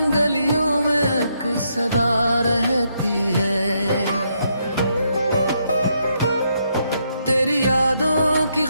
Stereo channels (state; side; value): inverted; both; correlation -0.77